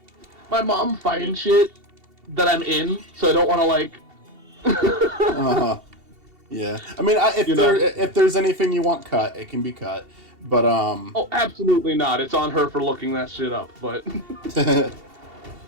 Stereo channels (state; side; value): late; left; 2.7 ms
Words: my mom finds shit that I'm in, so I don't want to like. Yeah, I mean, if there's anything you want cut, it can be cut. But Oh, absolutely not. It's on her for looking that shit up. But I